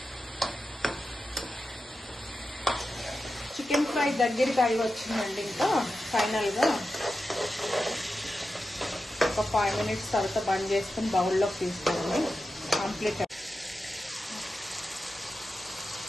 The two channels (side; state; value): both; normal; correlation 0.91